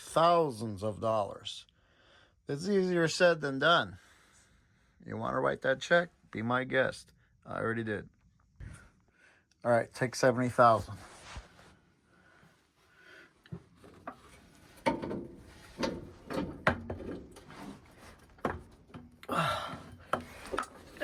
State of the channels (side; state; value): both; identical; correlation 1.00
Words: of dollars. It's easier said than done. You want to write that check? Be my guest. I already did. All right, take $70,000.